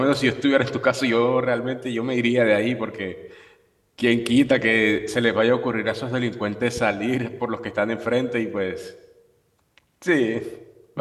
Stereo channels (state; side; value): identical; both; correlation 1.00